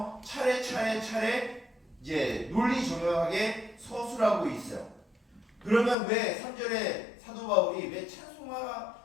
차례 논리정연하게 서술하고 있어요. 그러면 왜 3절에 사도 바울이 왜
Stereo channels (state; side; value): drops out; right; at 6.0 s